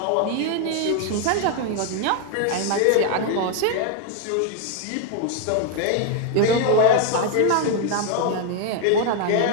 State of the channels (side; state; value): both; different; correlation 0.00